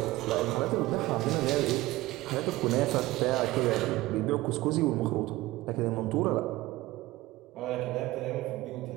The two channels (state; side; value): quieter; left; 18.5 dB